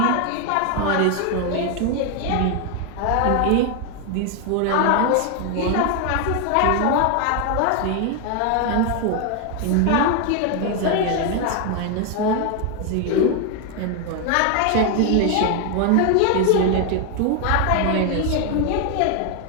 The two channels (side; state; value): both; different; correlation 0.01